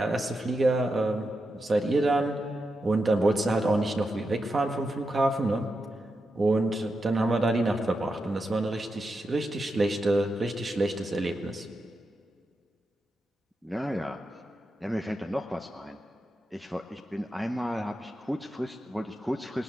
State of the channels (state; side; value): normal; both; correlation 0.87